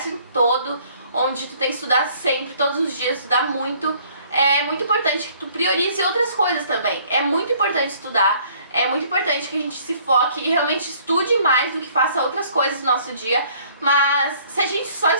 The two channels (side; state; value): both; inverted; correlation -0.59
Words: todo, onde tu tem que estudar sempre, todos os dias, estudar muito, é muito importante que tu priorize outras coisas também. É muito importante estudar. É muito importante que a gente se foque e realmente estude mais do que faça outras coisas no nosso dia. Mas se a gente só